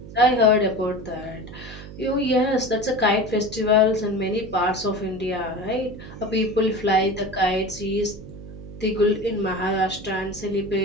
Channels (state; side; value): noise; right; hum, 14 dB below the sound